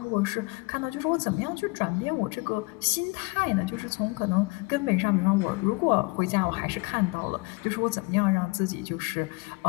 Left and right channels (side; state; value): right; quieter; 27.6 dB